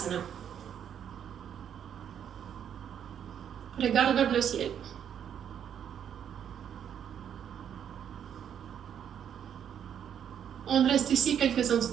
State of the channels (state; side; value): quieter; left; 8.9 dB